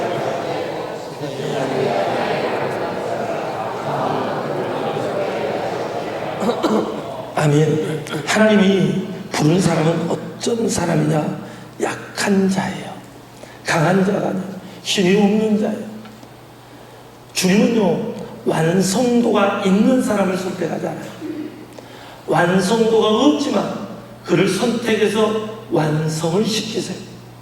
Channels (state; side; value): identical; both; correlation 1.00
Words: 아멘. 하나님이 부른 사람은 어떤 사람이냐? 약한 자예요. 강한 자가 아니에요. 힘이 없는 자예요. 주님은요, 완성도가 있는 사람을 선택하잖아요. 완성도가 없지만 그를 선택해서 완성을 시키세요.